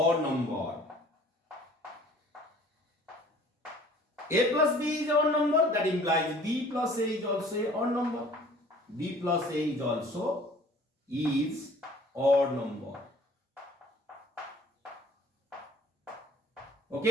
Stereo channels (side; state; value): both; normal; correlation 0.51